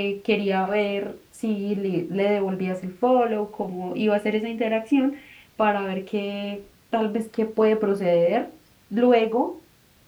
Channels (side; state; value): both; identical; correlation 1.00